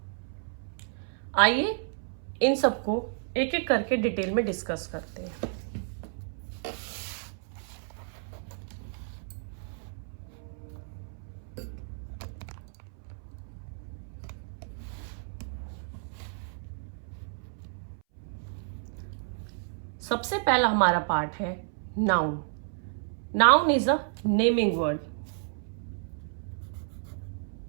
आइए इन सबको एक एक करके डिटेल में डिस्कस करते हैं। सबसे पहला हमारा पार्ट है noun. Noun is a naming word.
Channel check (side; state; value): left; silent; 57 dB below the other